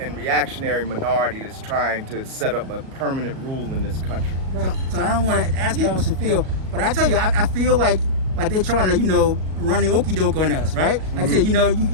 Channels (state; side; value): late; left; 38 ms